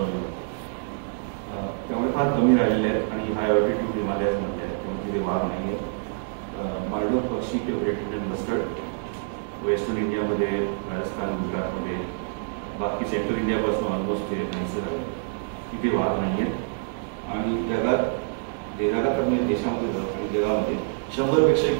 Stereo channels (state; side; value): silent; left; 61 dB below the other